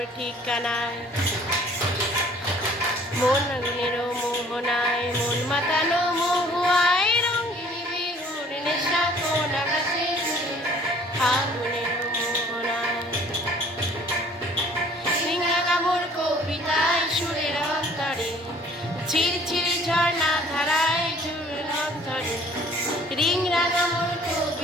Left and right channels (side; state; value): both; normal; correlation 0.54